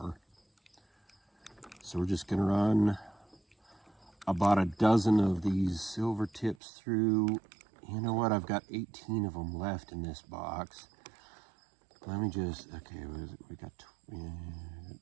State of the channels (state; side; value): drops out; left; at 6.6 s